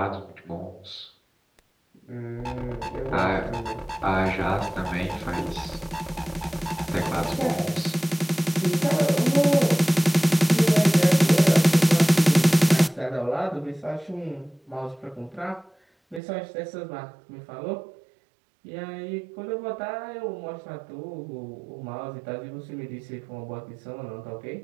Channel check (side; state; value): left; drops out; at 16.2 s